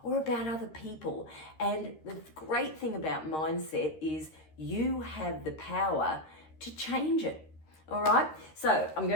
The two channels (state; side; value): late; right; 13 ms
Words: or about other people. And the great thing about mindset is you have the power to change it. All right, so I'm